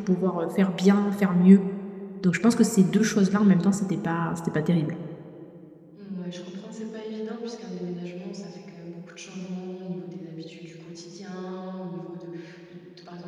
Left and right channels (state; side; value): identical; both; correlation 1.00